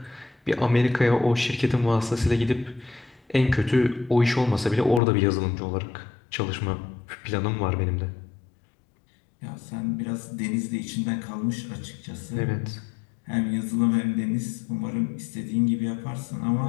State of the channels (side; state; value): right; drops out; at 5.0 s